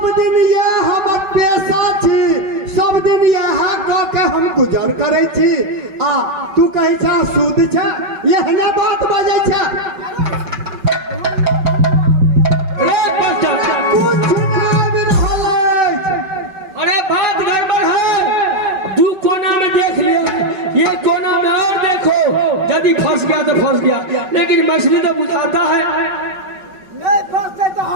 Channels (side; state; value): left; late; 5.3 ms